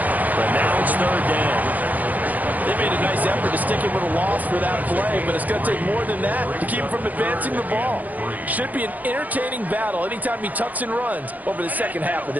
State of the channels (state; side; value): late; left; 0.081 ms